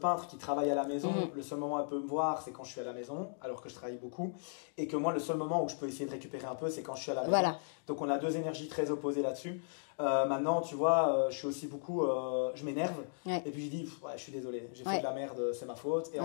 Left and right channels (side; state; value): right; silent; digital silence